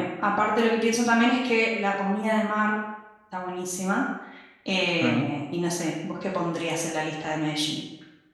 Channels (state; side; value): identical; both; correlation 1.00